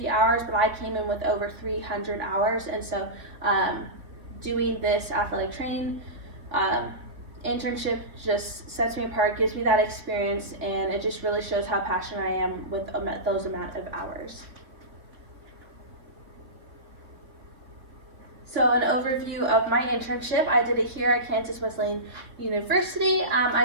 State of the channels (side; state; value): left; late; 3.4 ms